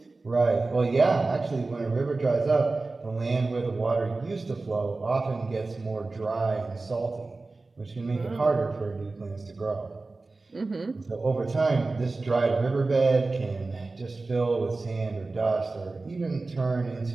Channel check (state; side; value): quieter; left; 3.5 dB